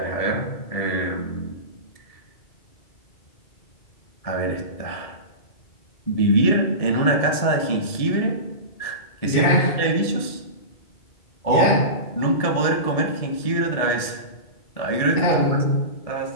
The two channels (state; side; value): late; right; 1.7 ms